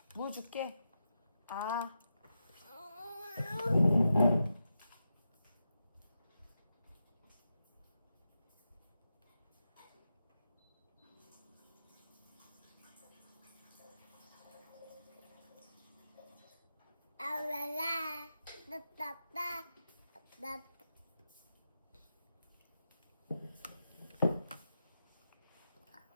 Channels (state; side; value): inverted; both; correlation -0.88